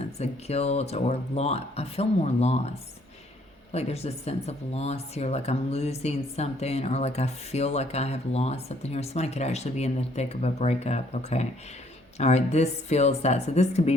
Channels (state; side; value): normal; both; correlation 0.65